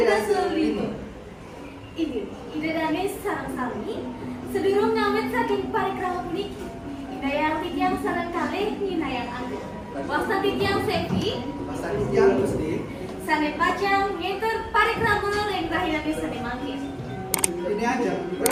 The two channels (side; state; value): both; identical; correlation 1.00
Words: dasa lima. Ide dane sarang sami, sedurung ngawet saking parikrama puniki. Inayang titiang sarang kali ninayang angga. Wasta titiang sepi, Pasal yang Gusti. sane pacang ngenter parikrama ring rahilane sane mangkir. Ini aja,